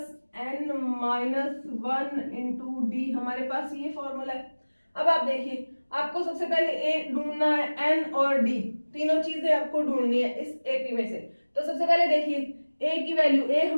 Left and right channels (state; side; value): inverted; both; correlation -1.00